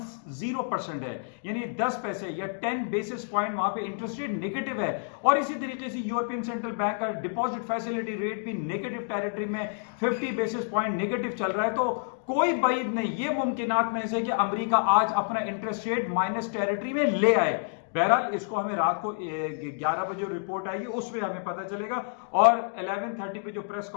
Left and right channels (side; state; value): right; silent; digital silence